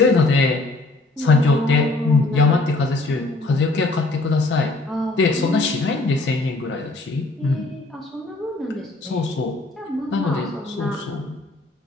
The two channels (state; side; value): quieter; right; 3.0 dB